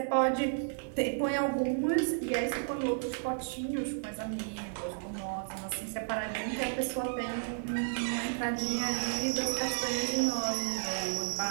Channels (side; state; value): left; silent; digital silence